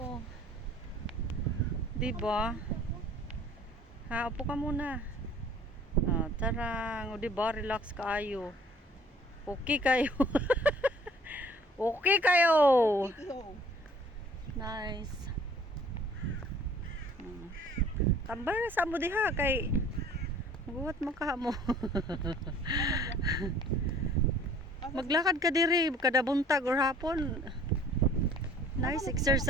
Di ba? Ha, upo ka muna. Ah, tarang, di ba? Relax kayo. Okay kayo. Okay kayo. Nice. Tambay na sa mo diha kay buhat mo ka mo. Maglakad ka diri kada buntag or hapon. Nice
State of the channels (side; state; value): both; normal; correlation 0.53